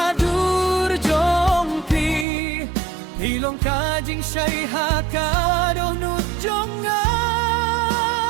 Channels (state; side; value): drops out; left; at 2.2 s